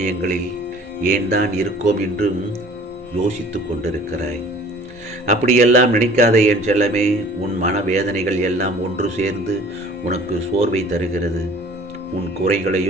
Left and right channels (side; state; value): both; normal; correlation 0.49